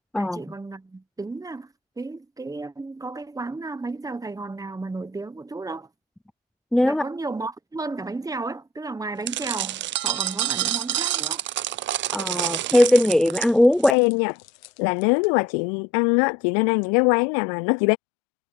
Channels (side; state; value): right; drops out; at 14.0 s